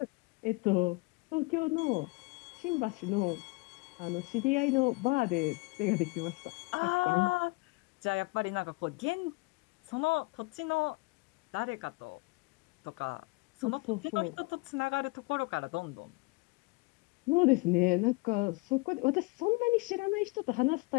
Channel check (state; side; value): quieter; right; 26.5 dB